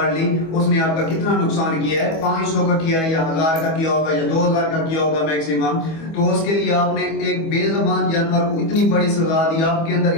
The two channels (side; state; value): right; late; 25 ms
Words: لی، اس نے آپ کا کتنا نقصان کیا ہے؟ 500 کا کیا ہے یا 1000 کا کیا ہوگا یا 2000 کا کیا ہوگا میکسیمم. تو اس کے لیے آپ نے ایک بے زبان جانور کو اتنی بڑی سزا دی. آپ کے اندر